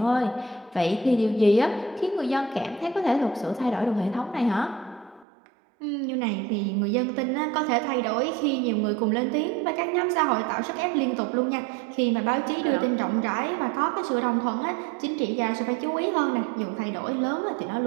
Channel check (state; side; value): drops out; left; at 5.2 s